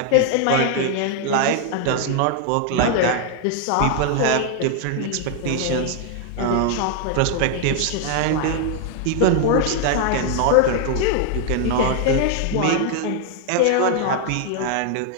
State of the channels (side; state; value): both; different; correlation 0.00